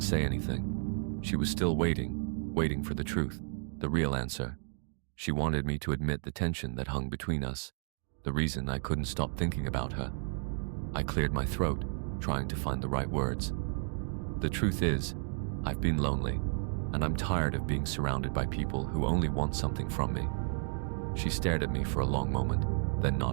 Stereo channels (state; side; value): silent; left; 56 dB below the other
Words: say anything. She was still waiting for the truth, the real answer. She wanted me to admit the tension that hung between us, the reason I couldn't stop thinking about her. I cleared my throat, trying to find the right words. "The truth is, I've been lonely, and I'm tired of being surrounded by people who only want something from me." She stared at me for a long moment, then